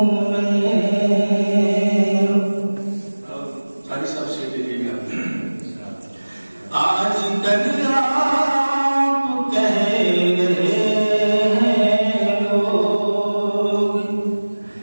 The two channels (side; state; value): both; inverted; correlation -1.00